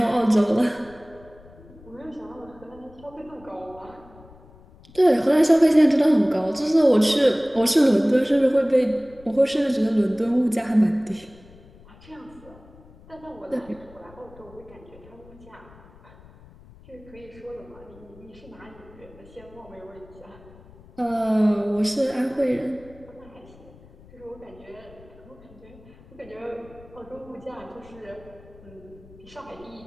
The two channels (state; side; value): noise; left; rumble, 23 dB below the sound